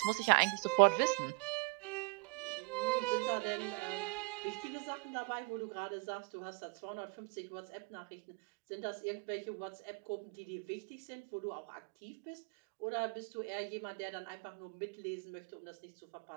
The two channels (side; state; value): left; quieter; 29.6 dB